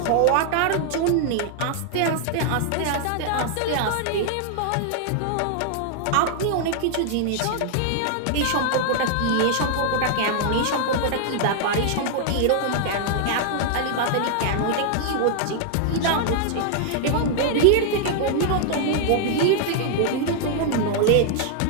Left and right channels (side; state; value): both; different; correlation 0.00